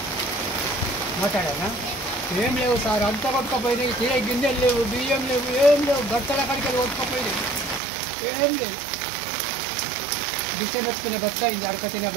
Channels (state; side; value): drops out; left; at 7.8 s